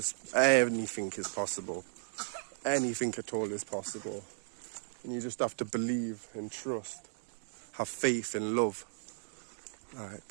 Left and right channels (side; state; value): left; silent; digital silence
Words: anything is possible. Anything at all is possible. And you just have to believe and trust. Have faith and love. Like,